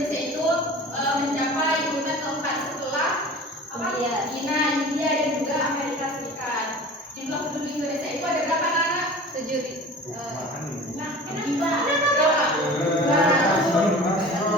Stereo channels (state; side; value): normal; both; correlation 0.40